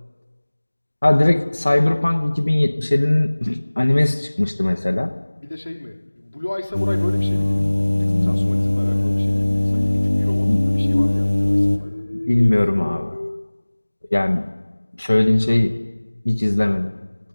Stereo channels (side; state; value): both; inverted; correlation -1.00